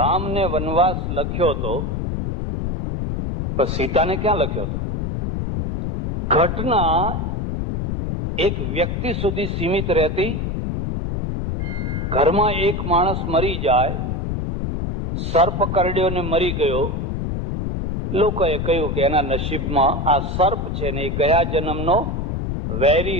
વનવાસ લખ્યો તો પણ સીતાને ક્યાં લખ્યો હતો? ઘટના એક વ્યક્તિ સુધી સીમિત રહેતી. ઘરમાં એક માણસ મરી જાય, સર્પ કરડ્યો ને મરી ગયો, લોકોએ કહ્યું કે એના નસીબમાં આ સર્પ છે ને એ ગયા જન્મનો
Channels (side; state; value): left; noise; rumble, 2 dB below the sound